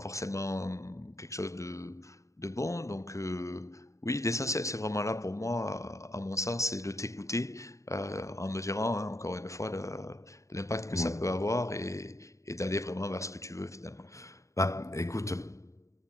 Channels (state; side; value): late; right; 0.15 ms